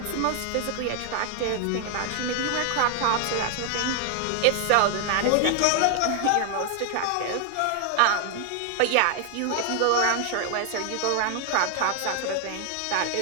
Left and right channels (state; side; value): different; both; correlation 0.00